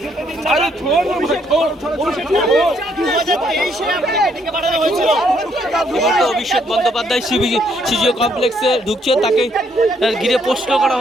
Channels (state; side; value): normal; both; correlation 0.70